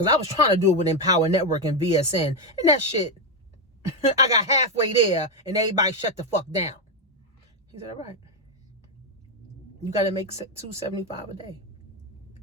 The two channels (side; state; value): both; normal; correlation 0.06